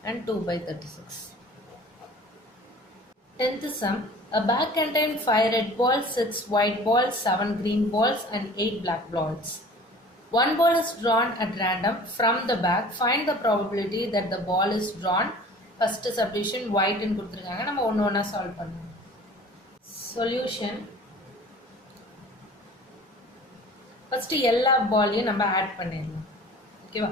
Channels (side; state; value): both; normal; correlation 0.45